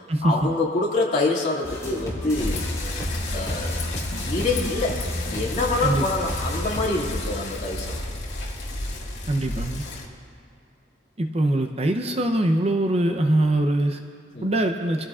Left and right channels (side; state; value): both; normal; correlation 0.64